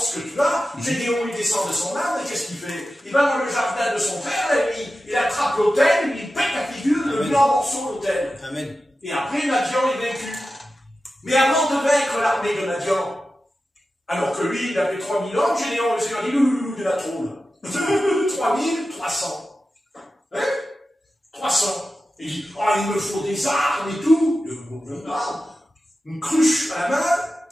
que tu as, Gédéon il descend de son arbre, et qu'est-ce qu'il fait? Il va dans le jardin de son frère, et il attrape l'autel, il pète la figure, il le met en morceaux l'autel. Amen. Et après, Madian est vaincu. Mais avant de vaincre l'armée de Madian, alors que lui, il avait 3000 hommes, Gédéon, le Seigneur dit, il a trop là. 3300. Hein? 300. Il dit, il me faut des armes et tout. une cruche à la main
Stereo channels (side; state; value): both; normal; correlation 0.93